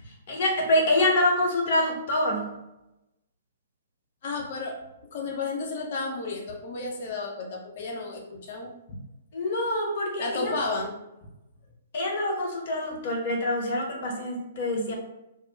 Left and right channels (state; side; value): inverted; both; correlation -0.51